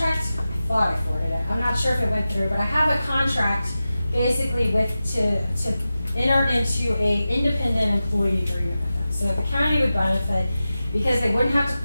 I thought I forwarded it. I'm not sure if it went through, but I have a contract basically to enter into a independent employee agreement with them. So the county would benefit because they wouldn't have to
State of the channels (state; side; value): inverted; both; correlation -0.94